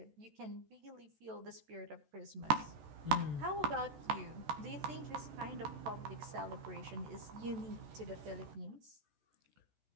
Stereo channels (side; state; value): left; late; 14 ms